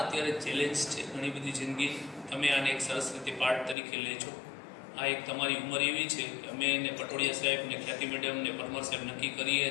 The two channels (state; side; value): drops out; right; at 3.8 s